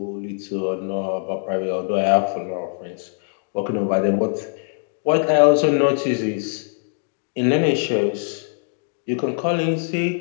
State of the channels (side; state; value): right; silent; digital silence